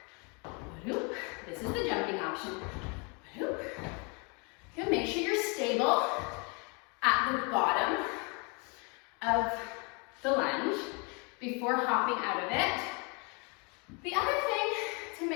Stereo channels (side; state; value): right; quieter; 32.8 dB